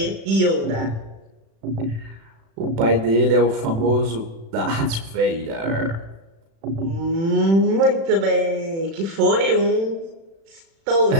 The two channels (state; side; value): late; left; 36 ms